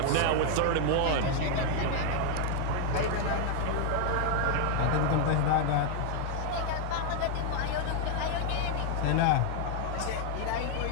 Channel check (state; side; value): different; both; correlation 0.00